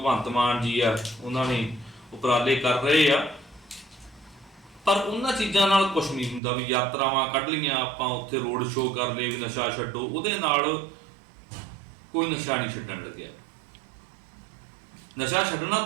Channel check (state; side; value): drops out; left; at 6.4 s